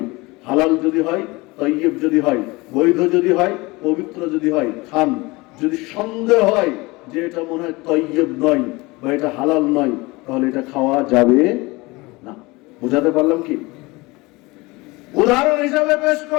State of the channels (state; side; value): quieter; right; 23.2 dB